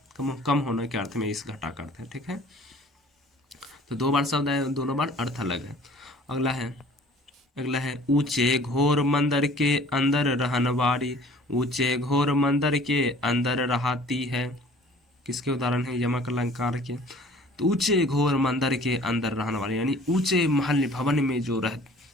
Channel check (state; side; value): normal; both; correlation 0.51